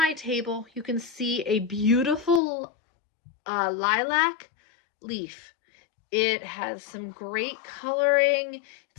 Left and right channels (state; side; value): drops out; right; at 2.4 s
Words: table you can see a beautiful lilac leaf. It has some great coloring.